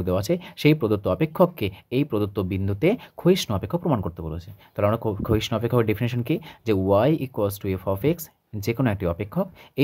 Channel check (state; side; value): identical; both; correlation 1.00